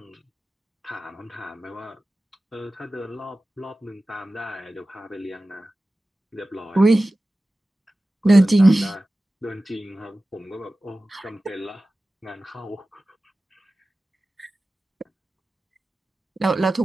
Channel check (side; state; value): both; normal; correlation 0.95